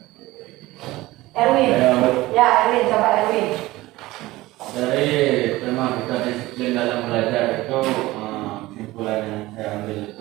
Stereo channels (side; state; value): left; quieter; 18.5 dB